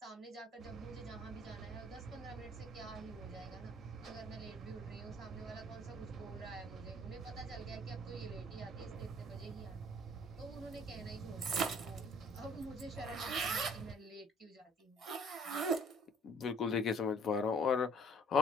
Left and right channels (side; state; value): both; normal; correlation 0.54